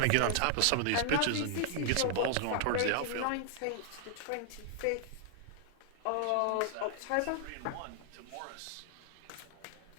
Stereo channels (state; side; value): different; both; correlation 0.00